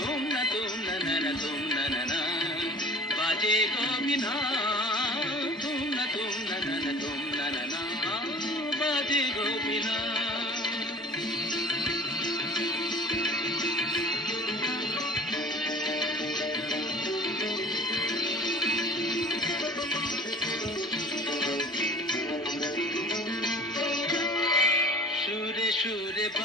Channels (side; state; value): both; normal; correlation 0.44